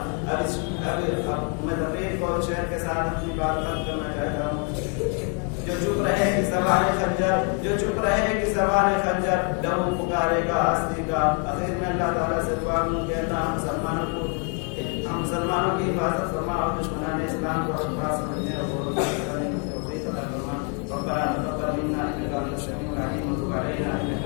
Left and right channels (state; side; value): quieter; right; 39.4 dB